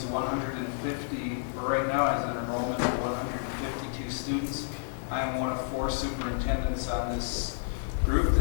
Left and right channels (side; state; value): right; silent; digital silence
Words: 150, or right now has an enrollment of 152 students. I am one of 4 superintendents on this group